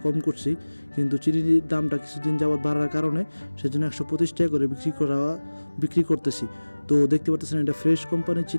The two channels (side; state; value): both; inverted; correlation -1.00